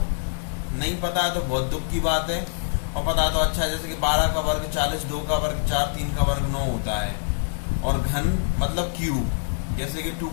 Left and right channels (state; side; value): silent; right; digital silence